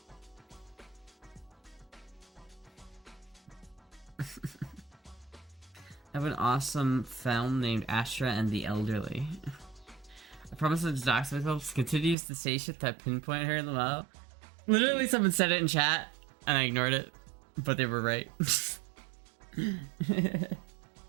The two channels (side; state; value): left; drops out; at 12.2 s